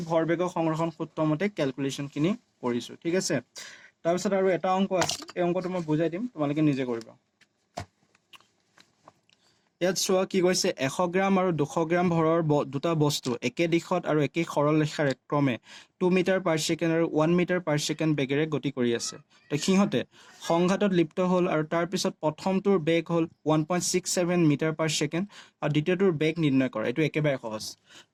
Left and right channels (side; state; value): both; identical; correlation 1.00